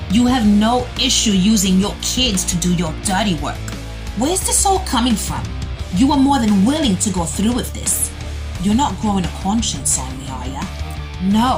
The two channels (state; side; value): identical; both; correlation 1.00